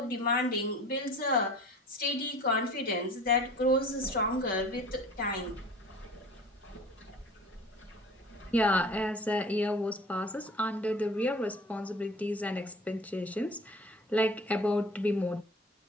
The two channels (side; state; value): both; normal; correlation 0.43